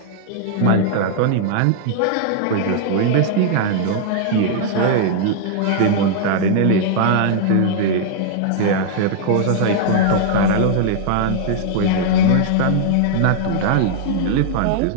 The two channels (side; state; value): both; different; correlation -0.01